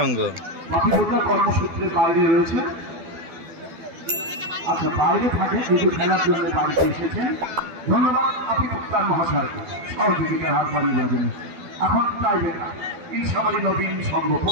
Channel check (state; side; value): late; left; 12 ms